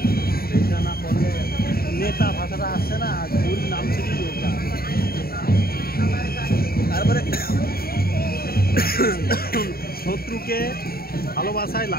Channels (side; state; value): right; late; 0.44 ms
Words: এটা না করলে নেতা ভাষাটা আসছে না ওর নাম থেকেই ওটা তারপরে শত্রুকে ভালোবাসায়